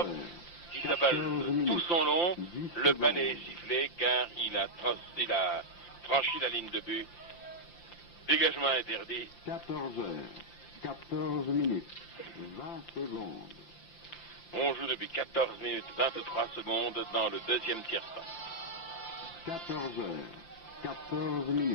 qui s'avale tout son long. Le balai est sifflé car il a franchi la ligne de but. Dégagement interdit. 14 heures, 14 minutes, 20 secondes. On joue depuis 14 minutes 23 secondes dans le deuxième tiers-temps. 14 heures, 14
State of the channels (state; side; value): late; right; 5.8 ms